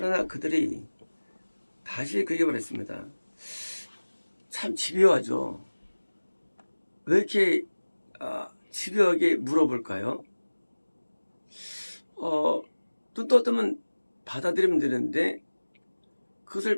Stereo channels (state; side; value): inverted; both; correlation -1.00